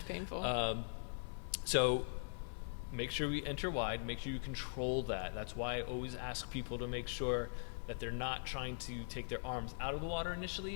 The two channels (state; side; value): silent; right; digital silence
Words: painful. So make sure we enter wide. Make sure you control that. That's why I always ask people to make sure that they're not trying to take their arms out of the water